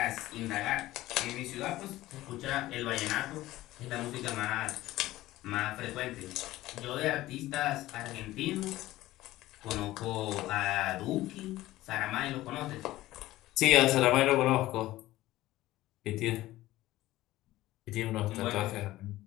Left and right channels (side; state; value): right; quieter; 16.4 dB